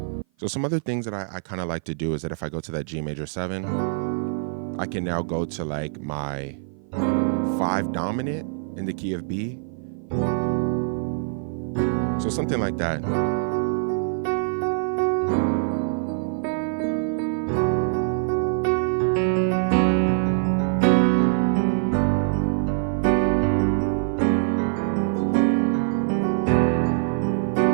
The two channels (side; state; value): left; silent; 56 dB below the other